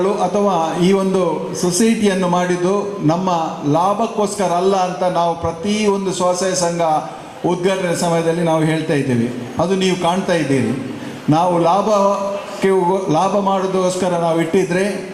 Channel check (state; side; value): identical; both; correlation 1.00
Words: ಅಥವಾ ಈ ಒಂದು ಸೊಸೈಟಿಯನ್ನು ಮಾಡಿದ್ದು ನಮ್ಮ ಲಾಭಕ್ಕೋಸ್ಕರ ಅಲ್ಲ ಅಂತ ನಾವು ಪ್ರತಿಯೊಂದು ಸ್ವಸಹಾಯ ಸಂಘ ಉದ್ಘಾಟನೆ ಸಮಯದಲ್ಲಿ ನಾವು ಹೇಳ್ತಾ ಇದ್ದೇವೆ. ಅದು ನೀವು ಕಾಣ್ತಾ ಇದ್ದೀರಿ. ನಾವು ಲಾಭ ಮಾಡೋದಕ್ಕೋಸ್ಕರ ನಾವು ಇಟ್ಟಿದ್ರೆ